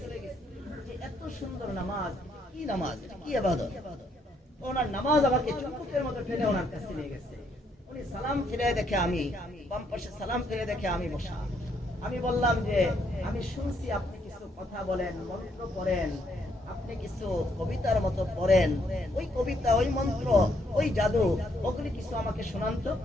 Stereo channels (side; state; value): both; normal; correlation 0.72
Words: যে এত সুন্দর নামাজ, কি নামাজ, কি ইবাদত। ওনার নামাজ আমাকে চুম্বকের মতো টেনে ওনার কাছে নিয়ে গেছে। উনি সালাম ফিরে দেখে, আমি বাম পাশে সালাম ফিরে দেখে আমি বসা। আমি বললাম যে আমি শুনছি আপনি কিছু কথা বলেন, মন্ত্র পড়েন, আপনি কিছু কবিতার মতো পড়েন, ওই কবিতা, ওই মন্ত্র, ওই জাদু, ওগুলি কিছু আমাকে শোনান তো।